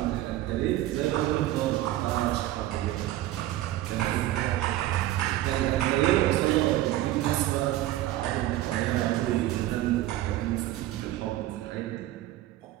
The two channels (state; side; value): quieter; left; 14.9 dB